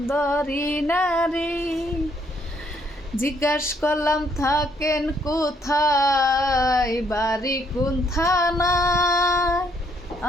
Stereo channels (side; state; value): both; normal; correlation 0.70